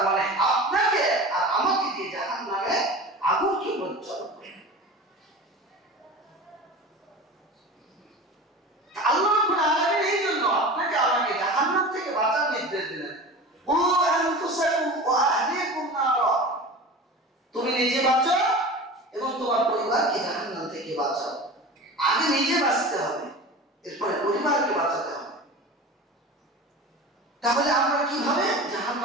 মানে আপনাকে আর আমাকে দিয়ে জাহান্নামে আগুনকে প্রজ্বলন করবে। আল্লাহ রাব্বুল আলামিন এই জন্য আপনাকে আমাকে জাহান্নাম থেকে বাঁচার নির্দেশ দিলেন। ও আনফুসাকুম ওয়া আহলিকুম নারা, তুমি নিজে বাঁচো এবং তোমার পরিবারকে জাহান্নাম থেকে বাঁচাও। আগে নিজে বাঁচতে হবে, এরপরে পরিবারকে বাঁচাতে হবে। তাহলে আমরা কিভাবে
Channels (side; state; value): both; normal; correlation 0.34